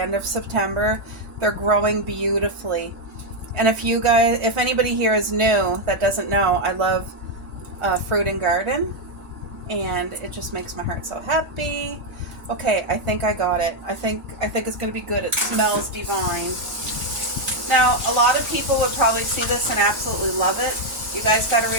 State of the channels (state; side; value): normal; both; correlation 0.01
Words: of September. They're growing beautifully. And if anybody here is new that doesn't know, I love fruit and garden. And it just makes my heart so happy. Okay, I think I got it. I think it's going to be good. It smells divine. Now, a lot of people would probably see this and absolutely love it. You guys got to